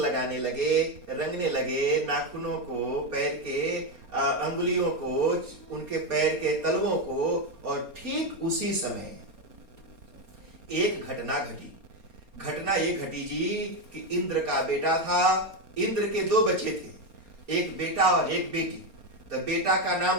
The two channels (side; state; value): left; late; 4.3 ms